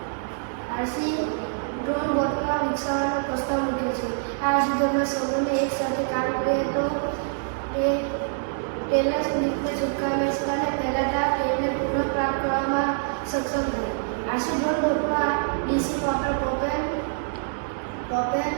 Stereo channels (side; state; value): left; silent; digital silence